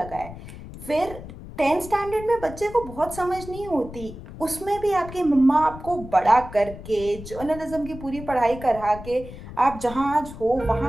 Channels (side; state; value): left; noise; rumble, 13 dB below the sound